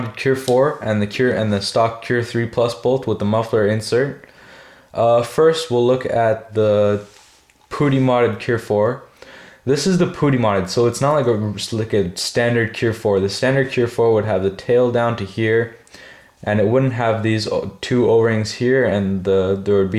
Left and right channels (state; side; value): identical; both; correlation 1.00